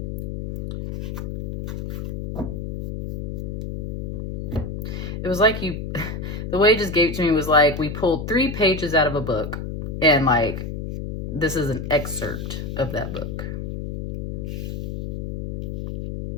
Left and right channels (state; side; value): noise; left; hum, 5 dB below the sound